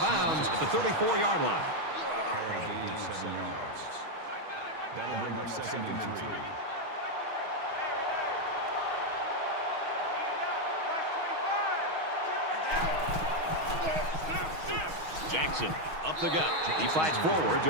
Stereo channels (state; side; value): late; left; 6.3 ms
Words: bounds at the 34-yard line. Call it a gain of 7 yards. That'll bring up 2nd and 3. Jackson up the gut. He fights forward to